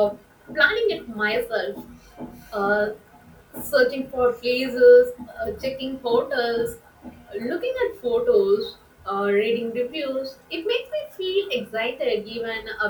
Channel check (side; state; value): both; identical; correlation 1.00